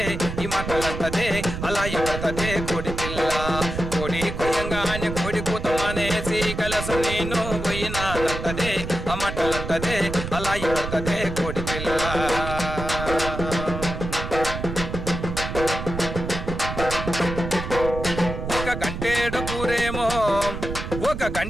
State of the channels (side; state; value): right; noise; rumble, 6 dB below the sound